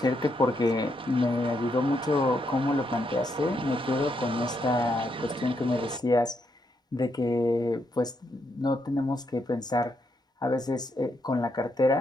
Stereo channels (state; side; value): normal; both; correlation 0.78